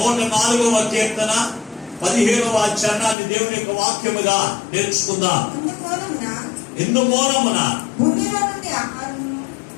కీర్తన 15వ చరణాన్ని దేవుని యొక్క వాక్యముగా నేర్చుకుందాం. ఇందుమూలమున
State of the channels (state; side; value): drops out; right; at 3.2 s